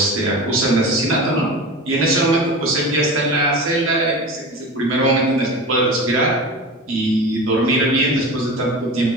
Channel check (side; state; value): both; normal; correlation 0.31